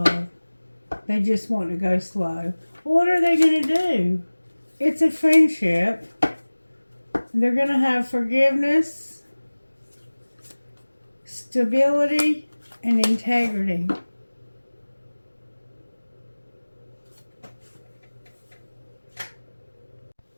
love. They just want to go slow. What are they going to do? It's a friendship. They're going to have forgiveness, stability, and integrity.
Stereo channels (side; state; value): both; inverted; correlation -1.00